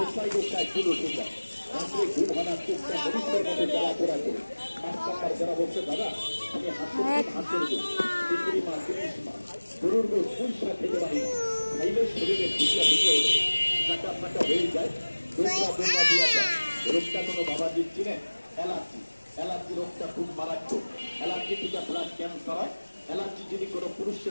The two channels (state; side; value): inverted; both; correlation -1.00